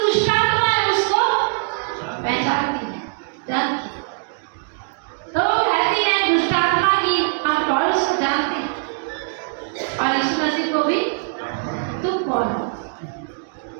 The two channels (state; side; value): silent; left; digital silence